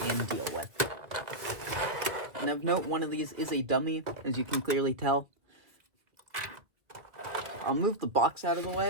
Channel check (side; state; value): left; late; 1.7 ms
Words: deal with. And of note, one of these is a dummy, as you can clearly tell. I'll move the box out of the